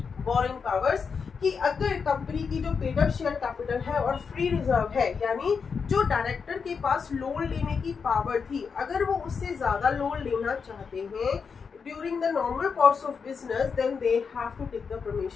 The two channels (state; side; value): quieter; right; 5.7 dB